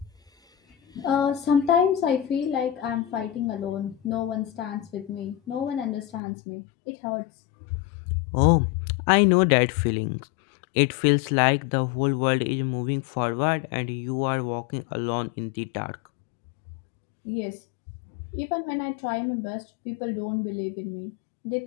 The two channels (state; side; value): drops out; right; at 6.2 s